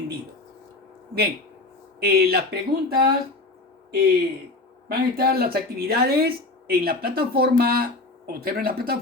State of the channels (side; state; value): right; quieter; 3.1 dB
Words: Bien, las preguntas, van a estar las actividades en la plataforma. Observen la